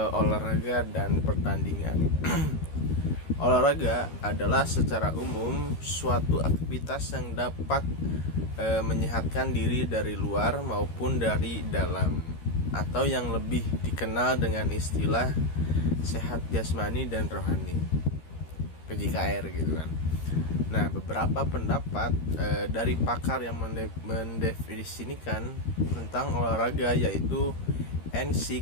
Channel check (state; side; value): late; right; 13 ms